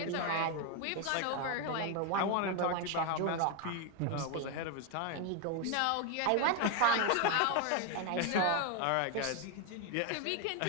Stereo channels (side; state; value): both; different; correlation 0.01